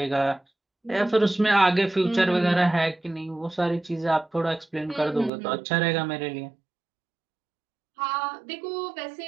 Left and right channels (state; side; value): drops out; left; at 5.3 s